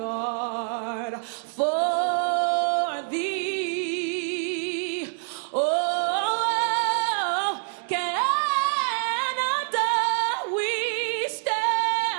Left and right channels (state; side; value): silent; left; 60 dB below the other